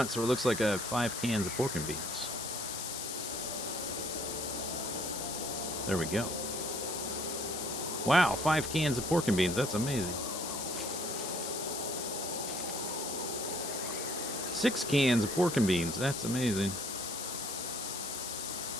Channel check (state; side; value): noise; left; hiss, 4 dB below the sound